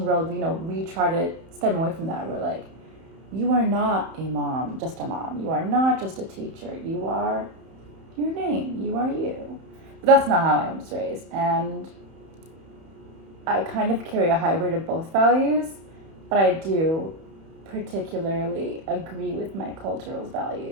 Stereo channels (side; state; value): left; late; 31 ms